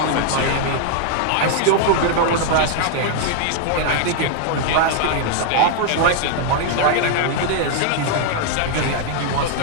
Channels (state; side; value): different; both; correlation 0.00